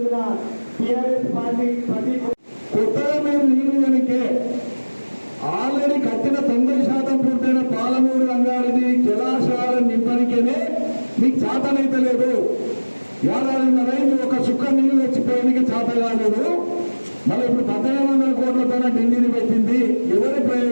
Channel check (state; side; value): inverted; both; correlation -1.00